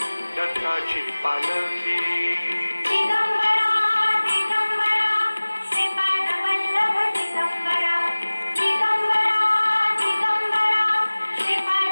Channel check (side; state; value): both; inverted; correlation -1.00